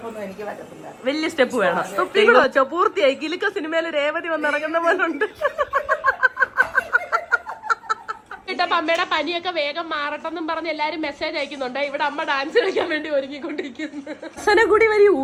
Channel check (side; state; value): both; identical; correlation 1.00